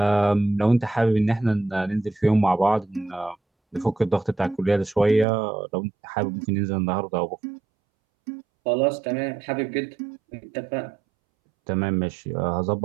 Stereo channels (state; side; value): drops out; left; at 5.2 s